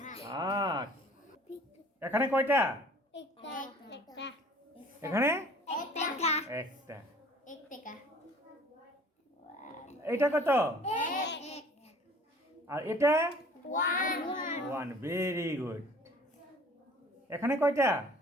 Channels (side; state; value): both; normal; correlation 0.51